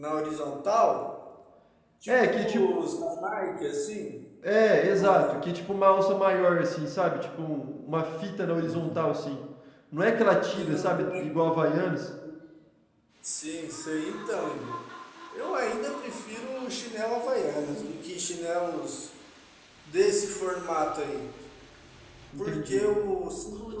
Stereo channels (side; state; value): both; identical; correlation 1.00